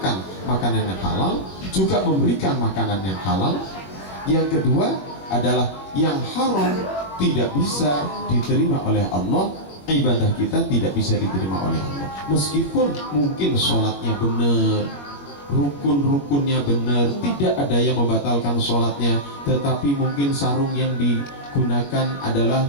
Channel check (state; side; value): late; right; 21 ms